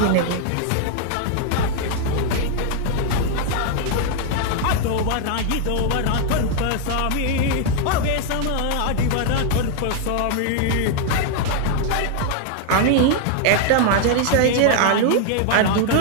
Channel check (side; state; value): both; different; correlation 0.00